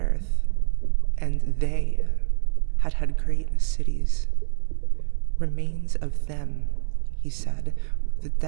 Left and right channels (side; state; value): left; silent; 62 dB below the other